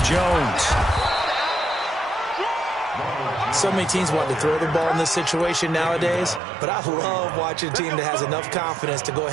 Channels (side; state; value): left; drops out; at 6.4 s